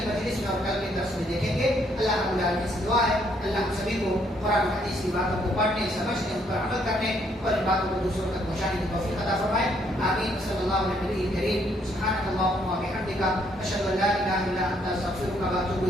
مجلس میں اور کل کے درس میں دیکھیں گے. اللہ رب العالمین سے دعا ہے اللہ ہم سبھی کو قرآن و حدیث کی باتوں کو پڑھنے سمجھنے ان پر عمل کرنے اور ان باتوں کو دوسروں تک پہنچانے کی توفیق عطا فرمائے آمین صلی اللہ علیہ نبی کریم سبحانک اللہم و بحمدک اشہد ان لا الہ الا انت استغفرک و اتوب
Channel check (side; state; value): both; normal; correlation 0.69